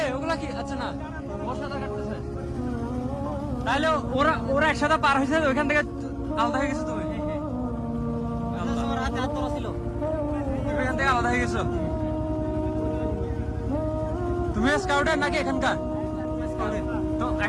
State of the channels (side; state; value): both; identical; correlation 1.00